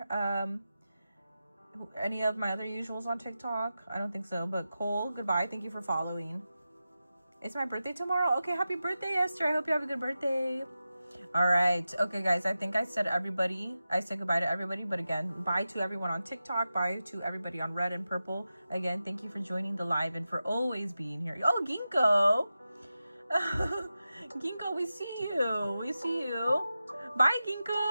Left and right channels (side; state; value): both; inverted; correlation -0.93